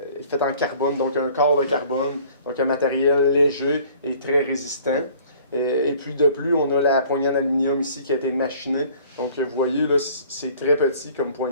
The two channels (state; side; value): inverted; both; correlation -0.53